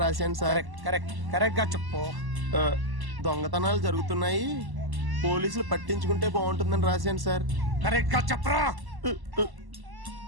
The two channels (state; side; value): late; left; 1.1 ms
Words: రాశాను సార్. కరెక్ట్ గా చెప్పు. దొంగతనాలు జరుగుతున్నాయి, పోలీసులు పట్టించుకుంటే బాగుంటుందని రాశాను సార్. కరెక్ట్ గా చెప్పరా.